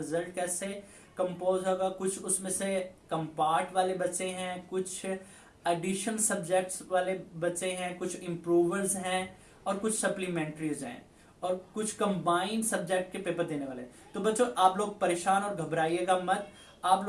कैसे कंपोज होगा। कुछ उसमें से कंपार्ट वाले बच्चे हैं, कुछ एडिशन सब्जेक्ट्स वाले बच्चे हैं, कुछ इम्प्रूवर्स हैं और कुछ सप्लीमेंट्रीज हैं और कुछ कंबाइंड सब्जेक्ट के पेपर देने वाले। तो बच्चों, आप लोग परेशान और घबराइएगा मत। आप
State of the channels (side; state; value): both; identical; correlation 1.00